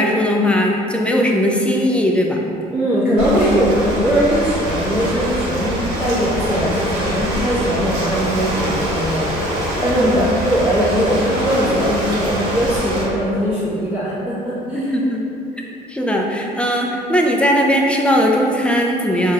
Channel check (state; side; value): normal; both; correlation 0.56